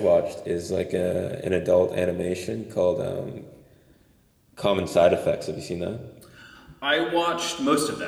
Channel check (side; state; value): both; identical; correlation 1.00